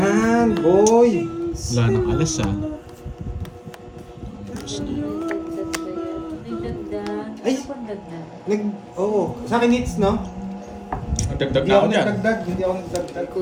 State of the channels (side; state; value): both; identical; correlation 1.00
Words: boy! Wala nang alas ah. Tapos na. Nagdagdag. Ay! Ano pang dagdag? Oo. Sa akin hits, no? Nagdagdag Hindi na ako ako dyan. nagdagdag. Hindi ako nagdagdag. Ako